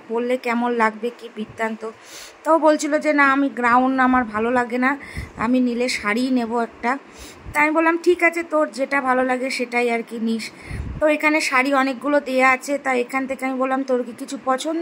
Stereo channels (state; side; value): identical; both; correlation 1.00